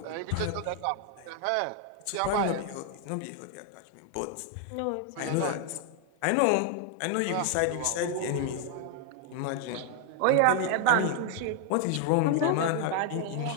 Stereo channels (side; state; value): both; different; correlation 0.00